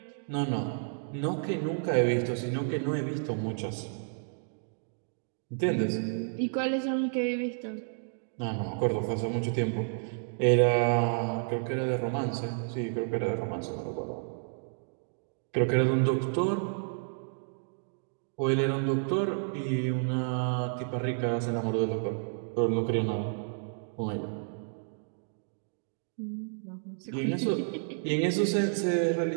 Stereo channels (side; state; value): left; silent; digital silence